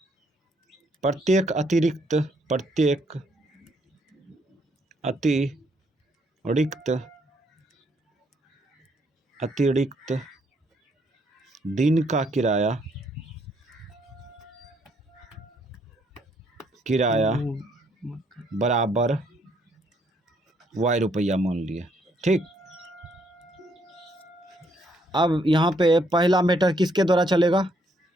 प्रत्येक अतिरिक्त दिन का किराया बराबर वाई रुपया मान लिए। ठीक, अब यहाँ पे पहला मैटर किसके द्वारा चलेगा,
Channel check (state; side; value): normal; both; correlation 0.70